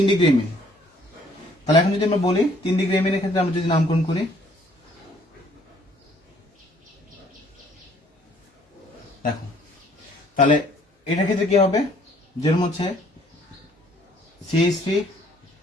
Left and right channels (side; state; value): both; normal; correlation 0.61